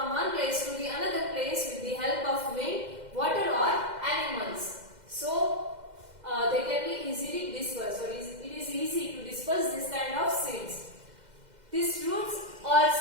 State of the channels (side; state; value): left; late; 2.0 ms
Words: one place to the another place with the help of wind, water or animals. So they can be easily dispersed. So it is easy to disperse this kind of seeds. These fruits or